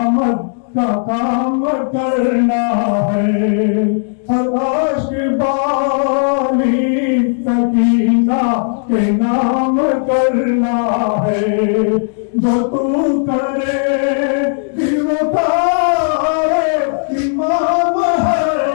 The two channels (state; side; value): silent; right; digital silence